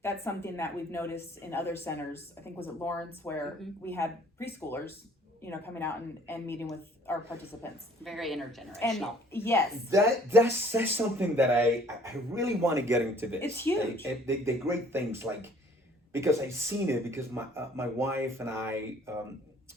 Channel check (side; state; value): both; normal; correlation 0.55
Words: that's something that we've noticed in other centers. I think was it Lawrence where we had preschoolers, coming out and meeting with our participants. Very And intergenerational. yes, That's something that I really want to get into this. It's huge. The great things because I've seen it because my wife and I